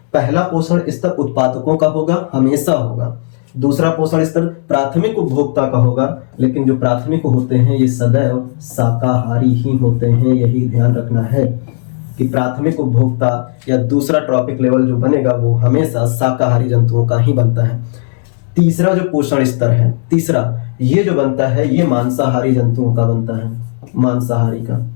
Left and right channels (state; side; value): silent; right; digital silence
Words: पहला पोषण स्तर उत्पादकों का होगा, हमेशा होगा। दूसरा पोषण स्तर प्राथमिक उपभोक्ता का होगा, लेकिन जो प्राथमिक होते हैं ये सदैव शाकाहारी ही होते हैं, यही ध्यान रखना है कि प्राथमिक उपभोक्ता या दूसरा ट्रॉपिक लेवल जो बनेगा वो हमेशा शाकाहारी जंतुओं का ही बनता है। तीसरा जो पोषण स्तर है, तीसरा ये जो बनता है ये मांसाहारी जंतुओं का बनता है, मांसाहारी का।